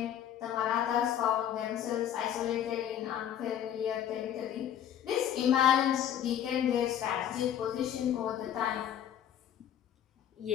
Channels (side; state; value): right; quieter; 10.2 dB